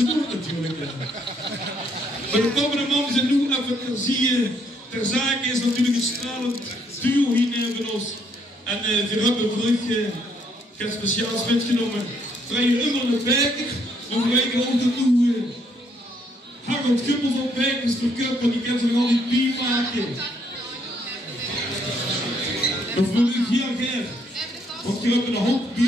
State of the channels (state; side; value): normal; both; correlation 0.70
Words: doen natuurlijk. Maar de komende man zijn nu even ter zake is natuurlijk een stralend duo hier van ons. En we hebben terug geen speciaals metgenomen. Terwijl je immer de Bijker, dan weten we ook dat nu Harold Gubbels op Bijkers verkupt, want die kan ze nog al die bier maken. Dat wil ik heel graag. Want je hebt een hoop